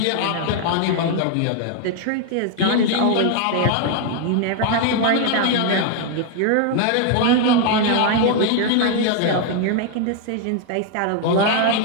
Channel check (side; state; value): both; different; correlation 0.00